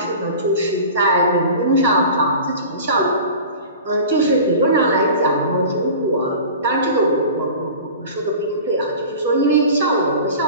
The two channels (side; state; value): both; inverted; correlation -0.38